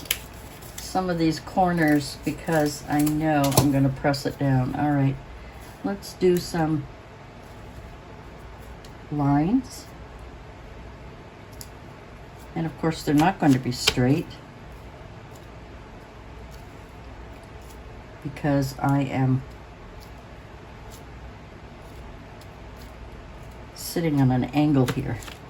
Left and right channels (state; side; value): identical; both; correlation 1.00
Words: some of these corners because I know I'm going to press it down. All right, let's do some lines. And of course, they're not going to be straight because I am sitting on an angle here.